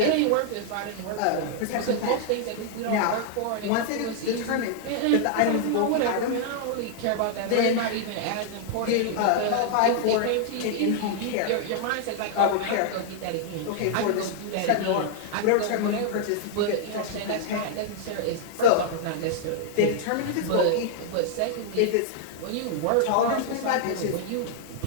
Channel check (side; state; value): both; different; correlation -0.01